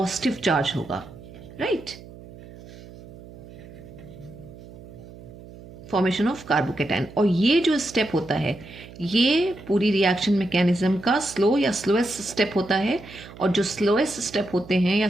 चार्ज होगा, राइट। Formation of carbocation. और ये जो स्टेप होता है ये पूरी रिएक्शन मैकेनिज्म का स्लो या स्लोएस्ट स्टेप होता है, और जो स्लोएस्ट स्टेप होते हैं या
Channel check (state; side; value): noise; right; hum, 18 dB below the sound